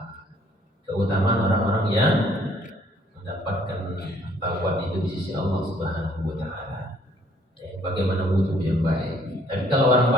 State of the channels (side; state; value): both; normal; correlation 0.62